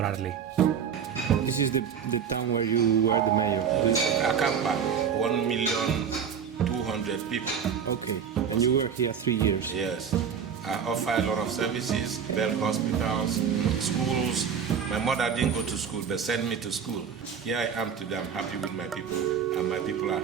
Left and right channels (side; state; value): left; quieter; 7.3 dB